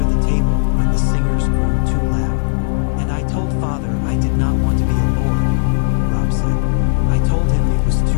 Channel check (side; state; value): right; silent; digital silence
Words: the table when the singers grew too loud. And I told Father I did not want to be a lord, Robb said. I told him it was